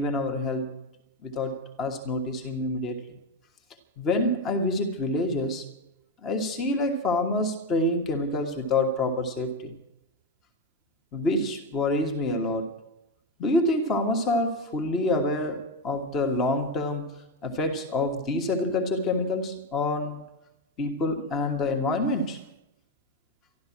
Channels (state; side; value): normal; both; correlation 0.13